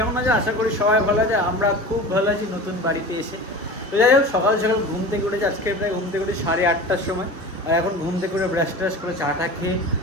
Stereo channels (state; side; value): normal; both; correlation 0.34